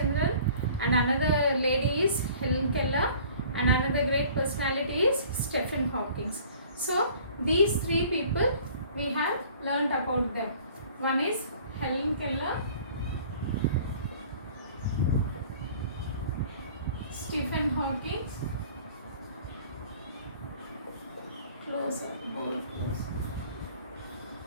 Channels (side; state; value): both; inverted; correlation -0.50